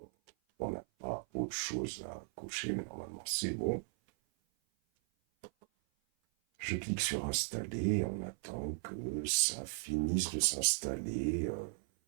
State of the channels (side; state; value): left; silent; 53 dB below the other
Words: on n'a pas autre chose à cocher, mais normalement c'est bon. Je clique sur installer, on attend que ça finisse de s'installer.